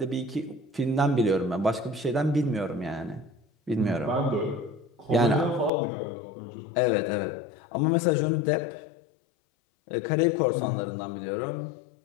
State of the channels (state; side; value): drops out; right; at 5.7 s